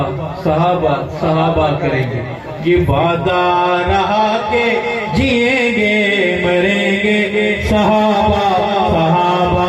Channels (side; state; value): both; identical; correlation 1.00